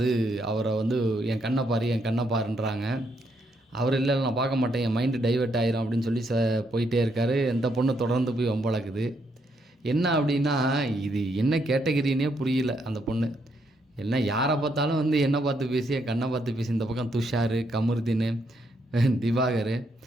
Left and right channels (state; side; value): normal; both; correlation 0.76